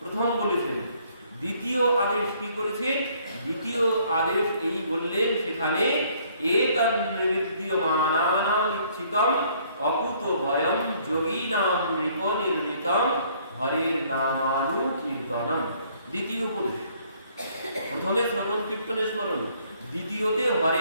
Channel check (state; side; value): inverted; both; correlation -0.63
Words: বলেছেন। দ্বিতীয় আদেশ কি করেছে? দ্বিতীয় আদেশ এই বললেন সেখানে, এতন্নির্দ্যমানানাম ইচ্ছিতম অকুত ভয়ম যোগীনাম নৃপনির্ণিতম হরের নামানুকীর্তনম। দ্বিতীয় উপদেশ, প্রথমে শ্রবণ কীর্তন স্মরণ, দ্বিতীয়তে